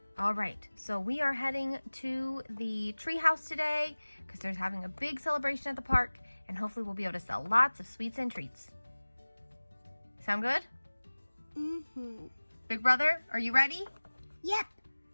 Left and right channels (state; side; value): inverted; both; correlation -1.00